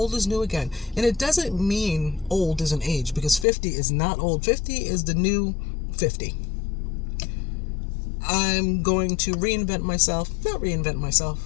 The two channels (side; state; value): right; drops out; at 3.5 s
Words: is new again. And it doesn't mean old is an age, because 50 is not old. 50 is the new 50. I'm going to